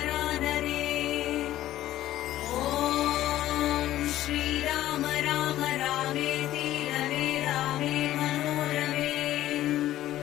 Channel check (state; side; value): quieter; right; 13.9 dB